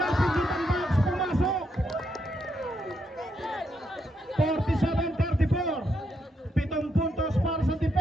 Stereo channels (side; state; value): both; normal; correlation 0.79